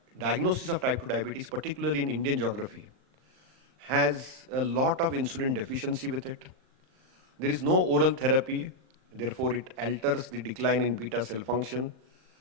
diagnosis of type 2 diabetes, particularly in Indian geography, has a lot of insulin deficiency with it. There is no oral therapy, therefore it alters the decline in beta cell function.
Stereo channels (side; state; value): left; late; 38 ms